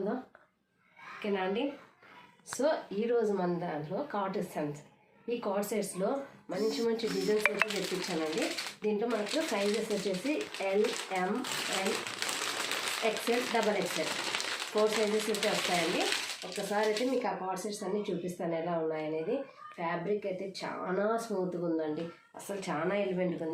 ఓకేనా అండి. సో ఈరోజు మన దాంట్లో కార్డ్ సెట్స్, ఈ కార్డ్ సెట్స్లో మంచి మంచి డిజైన్స్ అయితే తెప్పించానండి. దీంట్లో మనకు సైజెస్ వచ్చేసి L, M, L, XL, double XL 4 sizes అయితే వస్తాయండి. ఒక్కసారి అయితే మీకు ఆ కార్డ్ సెట్స్ అన్నీ చూపిస్తాను ఎలా ఉన్నాయనేది. ఫ్యాబ్రిక్ అయితే చాలా స్మూత్గా ఉందండి, అసలు చాలా ఎలిమెంట్గా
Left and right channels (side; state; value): both; identical; correlation 1.00